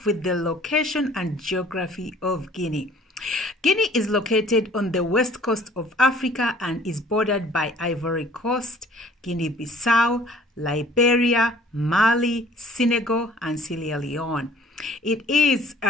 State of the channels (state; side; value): normal; both; correlation 0.53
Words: with the location and geography of Guinea. Guinea is located on the west coast of Africa and is bordered by Ivory Coast, Guinea-Bissau, Liberia, Mali, Senegal, and Sierra Leone. Its